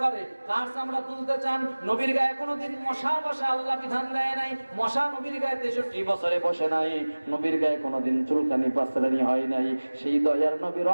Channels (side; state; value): both; inverted; correlation -1.00